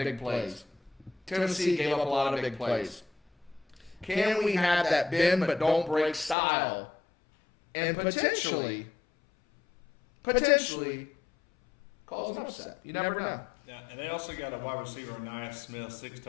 plays. Tennessee gave up a lot of big plays. Can we have that bend but don't break style and potentially cause an upset? You never know. Yeah, and they also got a wide receiver, Anaya Smith, 6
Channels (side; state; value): right; drops out; at 6.4 s